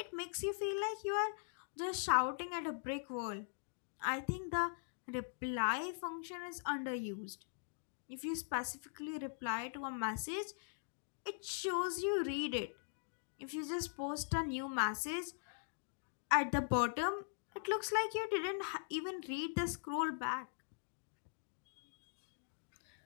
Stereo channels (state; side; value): silent; right; digital silence